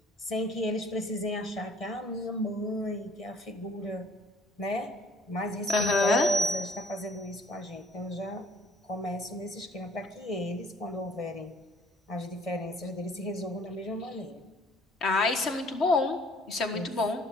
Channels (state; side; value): normal; both; correlation 0.57